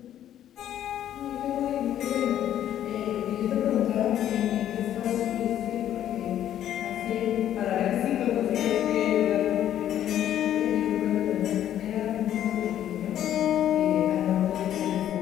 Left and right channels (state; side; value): quieter; right; 11.2 dB